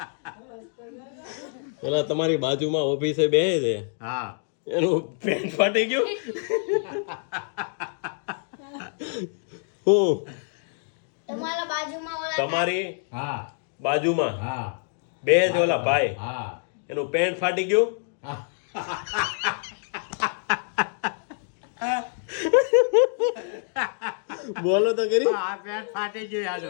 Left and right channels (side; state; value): right; silent; 61 dB below the other